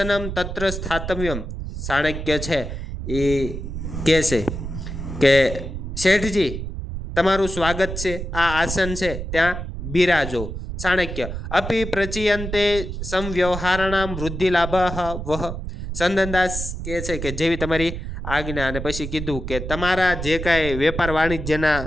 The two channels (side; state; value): right; noise; rumble, 6 dB below the sound